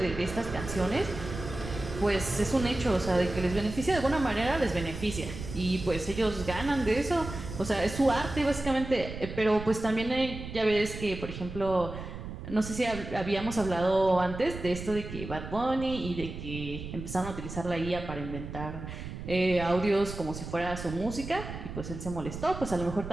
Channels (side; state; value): right; noise; rumble, 9 dB below the sound